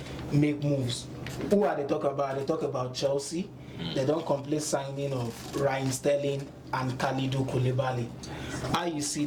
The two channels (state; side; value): identical; both; correlation 1.00